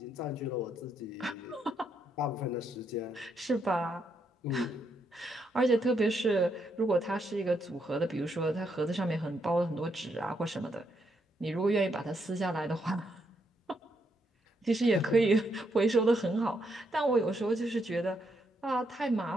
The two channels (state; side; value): normal; both; correlation 0.78